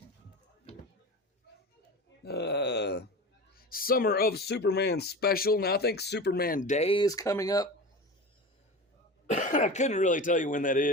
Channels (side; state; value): both; normal; correlation 0.31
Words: Summer of Superman special. Now, I think Superman Day is coming up. I couldn't really tell you when that